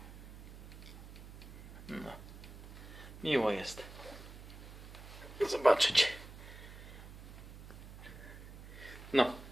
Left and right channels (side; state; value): right; noise; hum, 14 dB below the sound